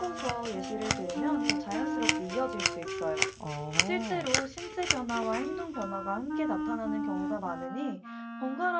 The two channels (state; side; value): identical; both; correlation 1.00